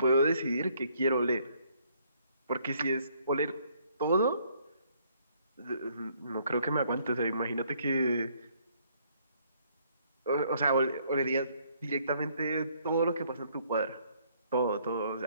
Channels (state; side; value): inverted; both; correlation -0.67